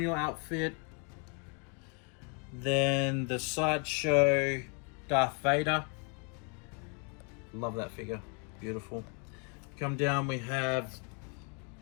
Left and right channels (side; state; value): right; quieter; 36.6 dB